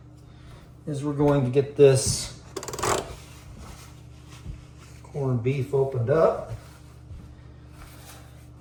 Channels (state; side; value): identical; both; correlation 1.00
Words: is we're going to get this corned beef opened up.